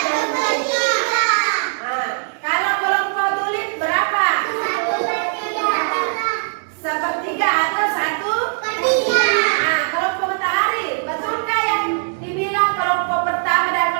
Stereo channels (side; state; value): left; silent; 66 dB below the other